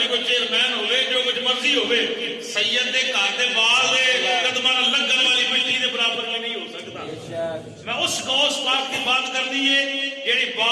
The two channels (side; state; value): both; identical; correlation 1.00